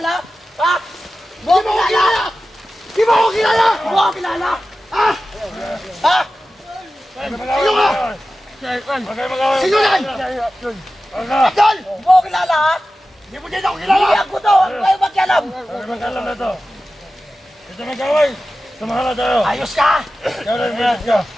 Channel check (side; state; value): both; normal; correlation 0.94